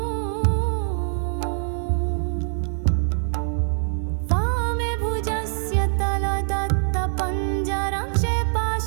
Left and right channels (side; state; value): left; silent; 63 dB below the other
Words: वामे भुजस्य तलदत्तपञ्जरं